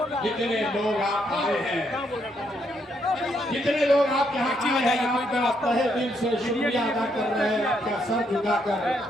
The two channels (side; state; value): both; normal; correlation 0.75